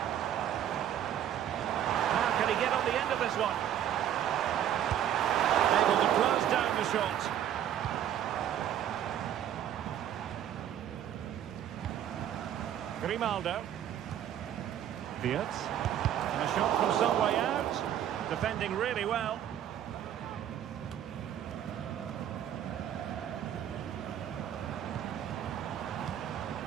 How can he get on the end of this one? Able to close down the shot. Grimaldo. Wirtz. And a shot from some way out. Defending really well.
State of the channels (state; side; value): quieter; left; 10.5 dB